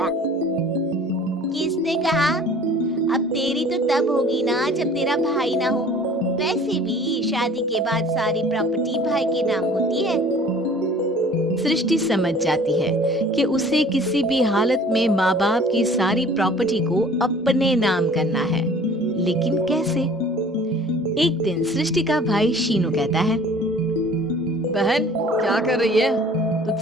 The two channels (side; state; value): both; normal; correlation 0.49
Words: किसने कहा? अब तेरी तो तब होगी ना जब तेरा भाई ना हो। वैसे भी शादी के बाद सारी प्रॉपर्टी भाई के नाम होती है। सृष्टि समझ जाती है कि उसे किसी भी हालत में माँ बाप की सारी प्रॉपर्टी को अपने नाम करना है, लेकिन कैसे? एक दिन सृष्टि का भाई शीनू कहता है, बहन क्या कर रही है?